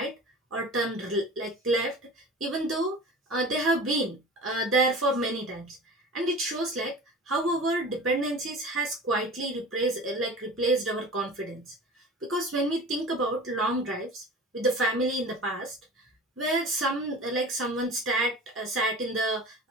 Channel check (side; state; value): both; normal; correlation 0.38